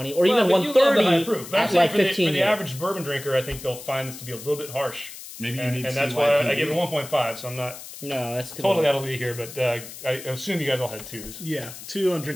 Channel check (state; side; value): noise; left; hiss, 14 dB below the sound